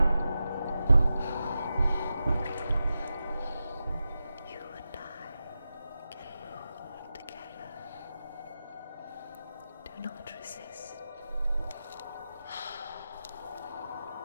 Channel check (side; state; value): both; inverted; correlation -0.91